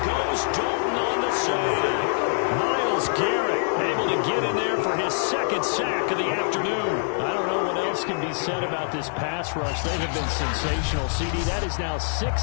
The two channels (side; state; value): right; silent; digital silence